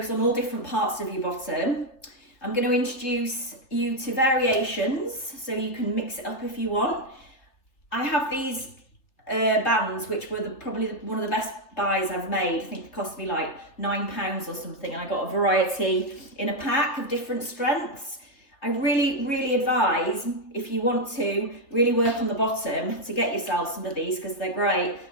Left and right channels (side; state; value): right; late; 3.3 ms